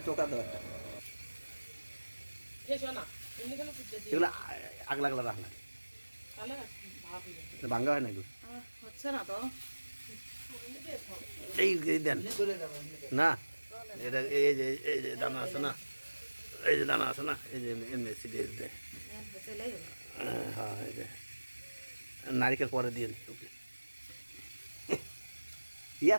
টোকা দাও একটা এগুলো আগলা আগলা রাখ না ভাঙ্গা হয় না এগুলো এই দেন না এটা এই যে দানা আছে না এই যে দানা আছে না এই যে এমনি সিরিয়াস দেয় হ্যাঁ এই যে নারিকেল পরে দিয়ে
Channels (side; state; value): both; inverted; correlation -1.00